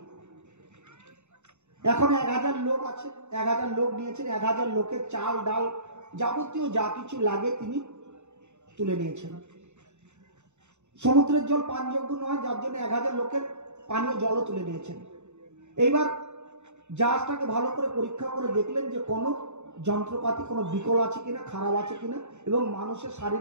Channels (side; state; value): left; late; 0.83 ms